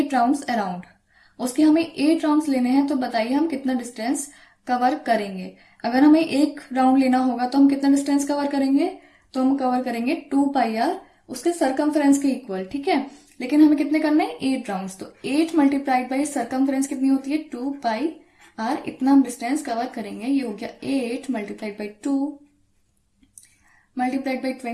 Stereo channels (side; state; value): both; identical; correlation 1.00